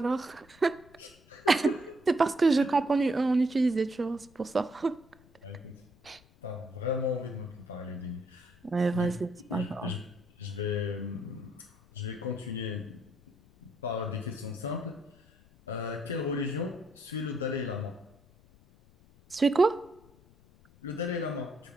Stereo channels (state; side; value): noise; left; rumble, 27 dB below the sound